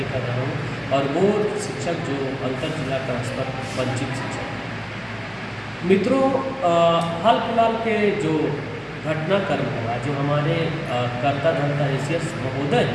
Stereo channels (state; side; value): identical; both; correlation 1.00